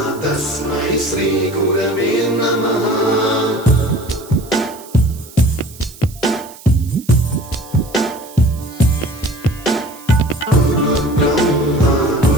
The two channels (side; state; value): right; noise; hiss, 20 dB below the sound